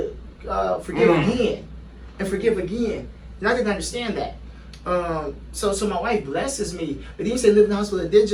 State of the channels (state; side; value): identical; both; correlation 1.00